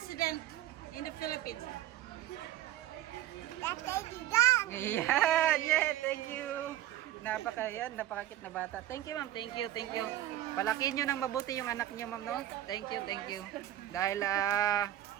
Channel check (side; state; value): left; quieter; 13.7 dB